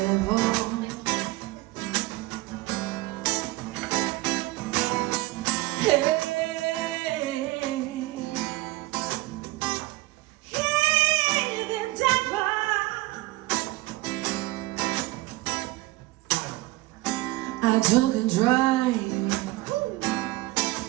Hey. I took a drive.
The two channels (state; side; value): quieter; left; 19.8 dB